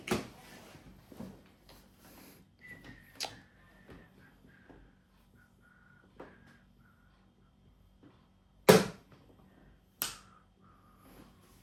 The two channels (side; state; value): both; identical; correlation 1.00